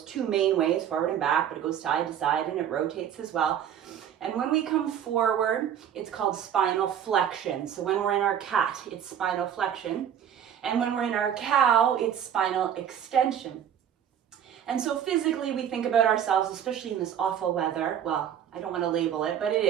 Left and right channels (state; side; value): quieter; left; 9.3 dB